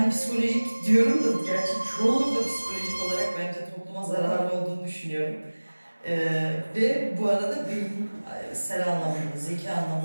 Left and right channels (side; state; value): both; inverted; correlation -1.00